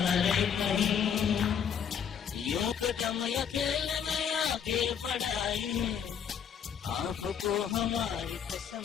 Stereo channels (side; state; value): right; quieter; 7.9 dB